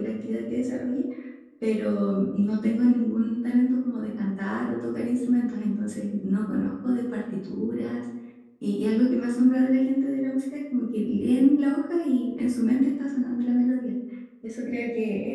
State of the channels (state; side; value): identical; both; correlation 1.00